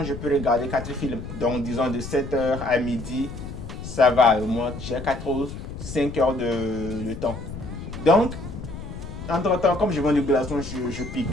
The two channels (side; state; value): left; noise; rumble, 10 dB below the sound